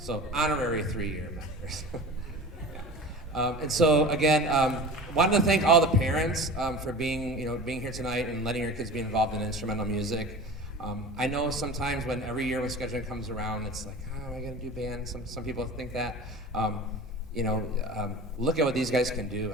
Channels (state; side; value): normal; both; correlation 0.36